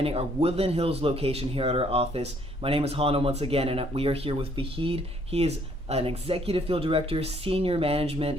our Woodland Hills location here at our office. My name is Hana once again, and we are here with Fahid. He is an executive field director, senior management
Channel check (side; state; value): both; normal; correlation 0.65